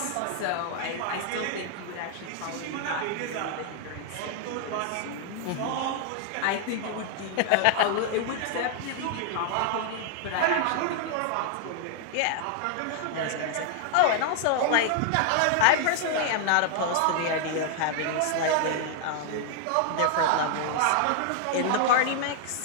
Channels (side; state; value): both; different; correlation 0.00